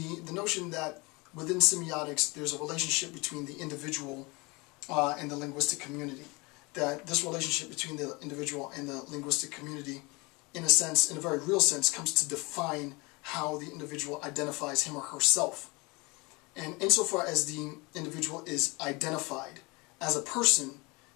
notion that within semiotics there's a relationship between the individual and the linguistic community. That this relationship between the individual and the linguistic community, in a sense, in a very real sense, comes to define how the individual identifies him or herself. And insofar as the individual is identified as a person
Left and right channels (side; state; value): right; quieter; 26.1 dB